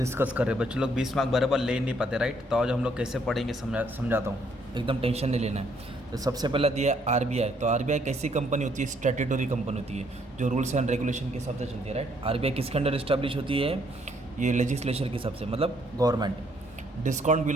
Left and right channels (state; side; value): normal; both; correlation 0.68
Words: कर रहे हैं। बच्चे लोग 20 मार्क बराबर ले नहीं पाते, राइट। तो आज हम लोग कैसे पढ़ेंगे समझाता हूँ, एकदम टेंशन नहीं लेना है। तो सबसे पहला दिया है आरबीआई। तो आरबीआई कैसी कंपनी होती है? स्टैट्यूटरी कंपनी होती है जो रूल्स एंड रेगुलेशन के हिसाब से चलती है, राइट। आरबीआई किसके अंडर इस्टेब्लिश होती है? ये लेजिस्लेचर के हिसाब से, मतलब government. Discount